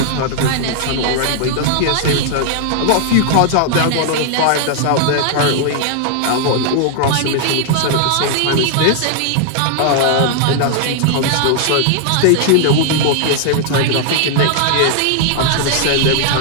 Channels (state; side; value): different; both; correlation 0.00